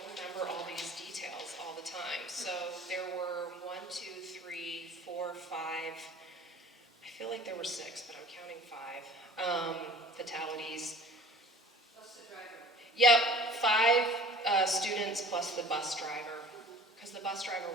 remember all these details all the time. So there were 1, 2, 3, 4, 5, I feel like there were 6, but I'm counting 5 fatalities. Plus the driver. Yep, 5 students plus the bus driver, because the bus driver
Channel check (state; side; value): normal; both; correlation 0.45